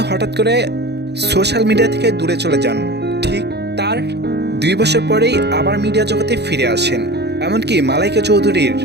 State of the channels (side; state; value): left; late; 0.49 ms